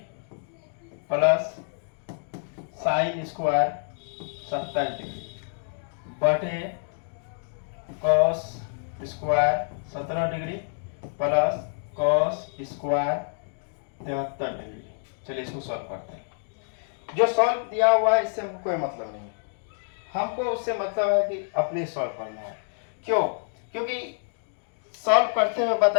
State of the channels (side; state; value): right; silent; digital silence